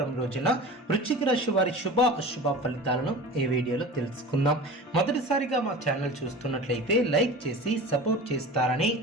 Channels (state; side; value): normal; both; correlation 0.35